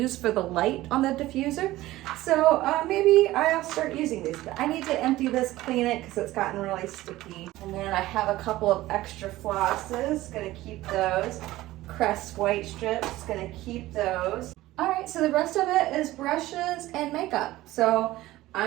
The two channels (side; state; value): left; quieter; 16.8 dB